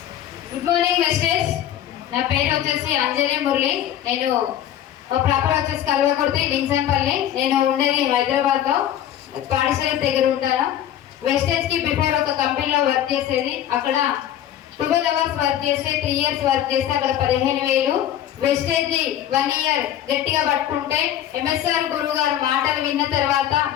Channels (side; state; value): right; quieter; 11.1 dB